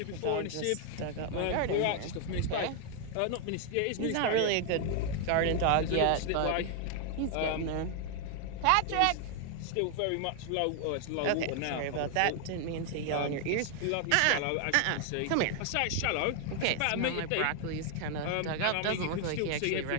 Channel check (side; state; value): both; different; correlation 0.00